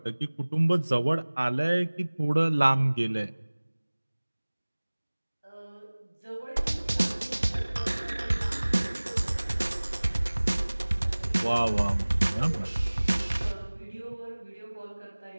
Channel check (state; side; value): inverted; both; correlation -1.00